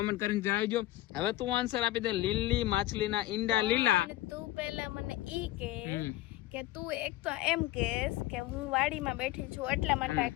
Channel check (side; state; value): right; quieter; 16.1 dB